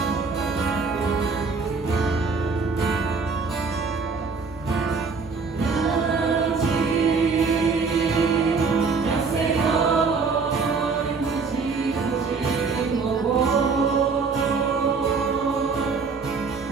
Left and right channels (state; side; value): quieter; left; 4.6 dB